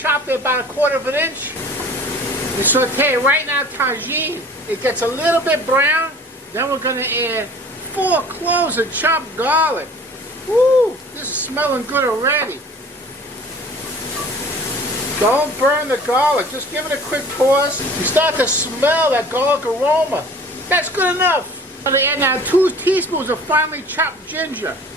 it about 1/4 of an inch. We saute it right now, tagine. It gets a little bit brown. Then we're going to add 4 cloves of chopped garlic. Woo! This is smelling good already. Don't burn the garlic. Just give it a quick toss. You start to smell that garlic aroma. That's good enough. I'm going to add now 2 teaspoons of finely chopped ginger.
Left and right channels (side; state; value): both; normal; correlation 0.46